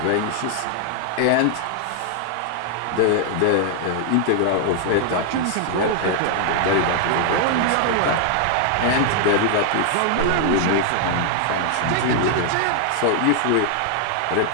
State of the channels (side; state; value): both; different; correlation 0.00